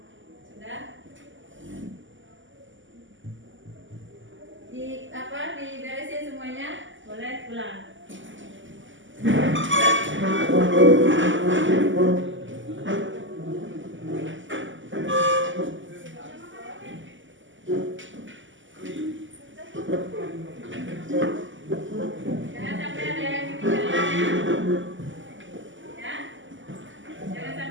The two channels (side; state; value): left; late; 0.55 ms